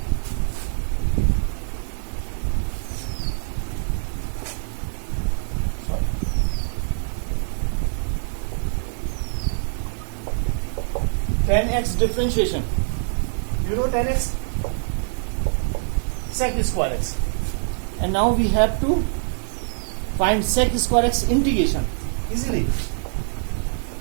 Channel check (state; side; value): silent; left; digital silence